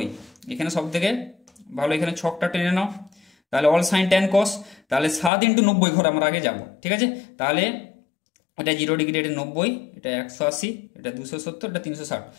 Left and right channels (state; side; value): drops out; right; at 5.3 s